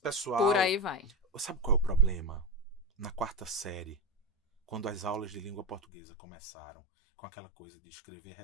Por aí vai. Sabe qual é o problema? Na 4ª série, quando as aulas de língua portuguesa começaram com aquela coisa de escrever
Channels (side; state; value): right; drops out; at 5.8 s